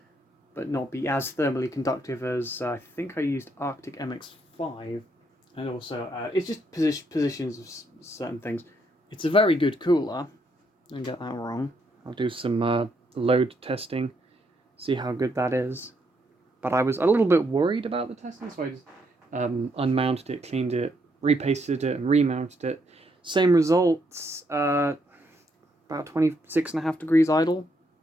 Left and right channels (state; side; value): normal; both; correlation 0.75